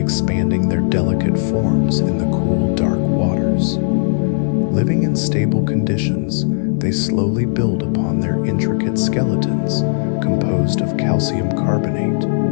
their delicate forms in the cool, dark waters. Living in stable conditions, they slowly build upon their intricate skeletons, composed of calcium carbonate.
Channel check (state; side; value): silent; right; 65 dB below the other